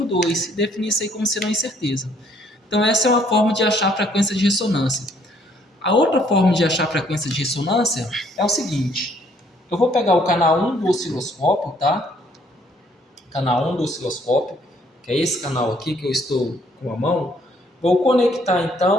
2 e definir isso aí como sendo uma incerteza. Então, essa é uma forma de achar a frequência de ressonância. A outra forma de achar a frequência de ressonância é o seguinte. Eu vou pegar o canal 1 do osciloscópio, tá? Canal 1 do osciloscópio, que é esse canal aqui que eu estou com a mão. Vou conectar,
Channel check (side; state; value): both; normal; correlation 0.64